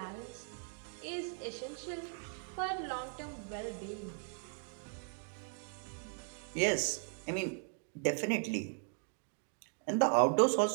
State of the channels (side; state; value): left; silent; 52 dB below the other